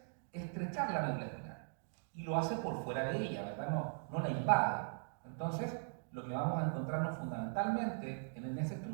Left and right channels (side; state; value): left; silent; digital silence